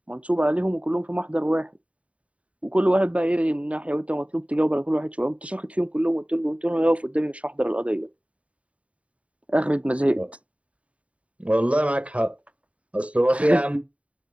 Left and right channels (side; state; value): left; late; 0.065 ms